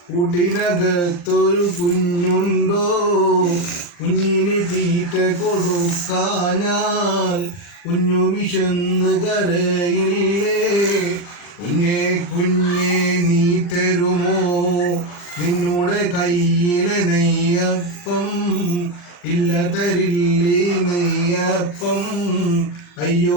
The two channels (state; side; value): late; right; 40 ms